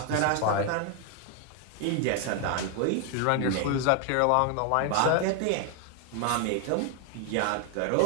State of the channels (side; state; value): both; different; correlation 0.01